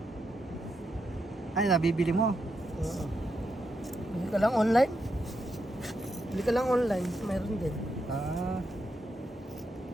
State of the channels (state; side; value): normal; both; correlation 0.83